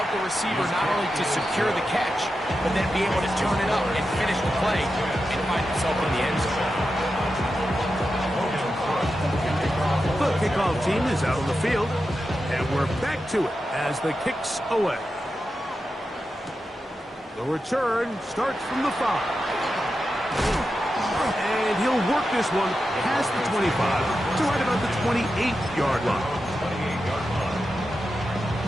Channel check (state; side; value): normal; both; correlation 0.90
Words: the receiver not only to secure the catch, but then be able to turn it up and finish the play and find himself in the end zone. The kickoff team is out on the field, and we're back to it as the kick's away. The return starts from the 5. And he'll work this one past the 25 to right about the 28-yard line.